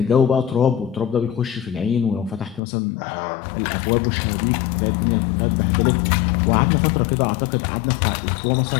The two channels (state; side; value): drops out; right; at 2.6 s